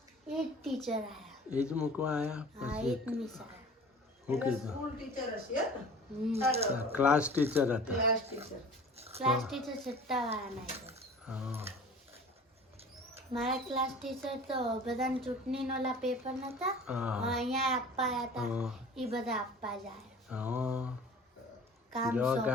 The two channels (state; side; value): normal; both; correlation 0.43